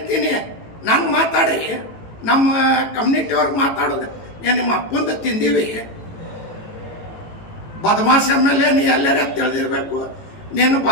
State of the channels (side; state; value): right; late; 18 ms